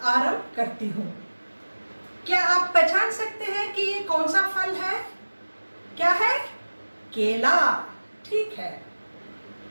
आरंभ करती हूँ। क्या आप पहचान सकते हैं कि ये कौन सा फल है? क्या है? केला। ठीक है।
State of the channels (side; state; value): both; inverted; correlation -1.00